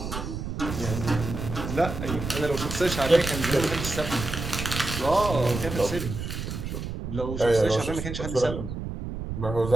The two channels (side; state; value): right; noise; rumble, 6 dB below the sound